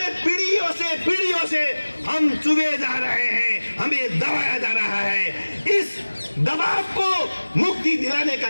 पीढ़ियों से हम चुभे जा रहे हैं, हमें दबाया जा रहा है। इस दबाव को मुक्ति दिलाने का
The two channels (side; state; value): both; inverted; correlation -1.00